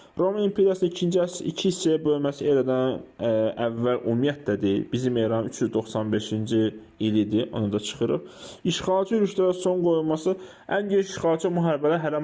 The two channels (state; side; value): identical; both; correlation 1.00